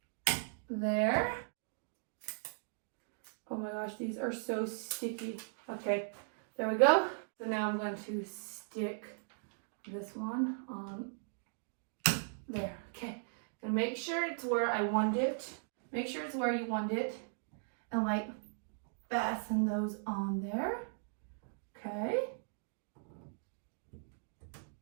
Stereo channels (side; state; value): left; silent; digital silence